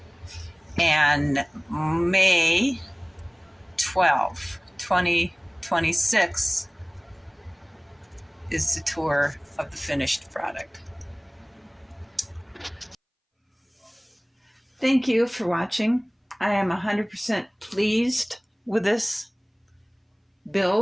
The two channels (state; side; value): identical; both; correlation 1.00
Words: And May 12th, 2026 is the tour of the finished product. Thank you for watching. I am 100% pleased with this